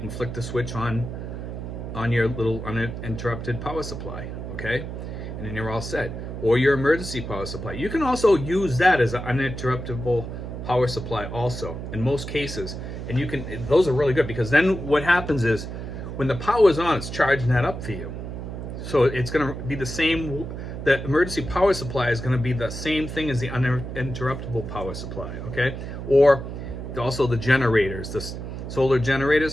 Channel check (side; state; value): right; noise; hum, 7 dB below the sound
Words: and flick the switch on on your little uninterrupted power supply, okay? And then you're all set. Or your emergency power supply. You can also use that as an uninterruptible power supply also, in most cases. And you can, those are really good, because then what happens is, when the power is on, it's charging that up for you. So it's gonna be the same, the emergency power supply is gonna be the same thing as the uninterruptible power supply, okay? Or also the generators, the solar